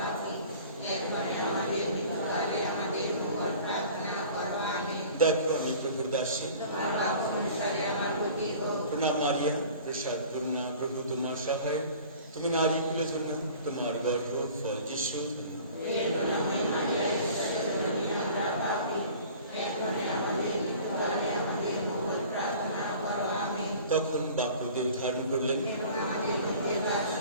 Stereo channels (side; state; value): both; inverted; correlation -0.45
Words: দেখো আমি প্রভুর দাসী। প্রণাম মারিয়া, প্রসাদ পূর্ণা, প্রভু তোমার সহায়। তুমি নারী কুলের জন্য তোমার গর্ভ ফল যিশু। তখন বাক্যদেব ধারণ করলেন।